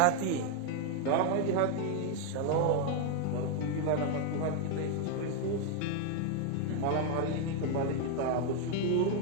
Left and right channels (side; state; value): both; different; correlation 0.01